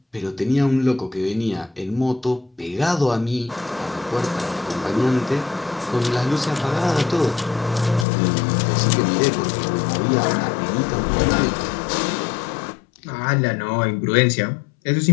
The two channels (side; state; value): right; drops out; at 8.1 s